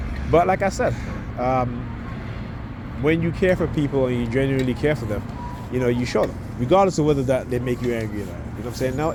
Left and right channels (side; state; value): both; identical; correlation 1.00